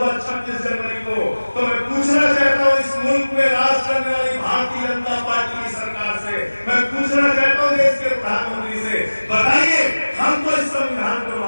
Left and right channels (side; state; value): both; inverted; correlation -1.00